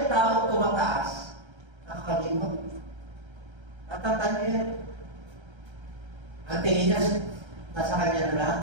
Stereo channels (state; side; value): late; left; 1.3 ms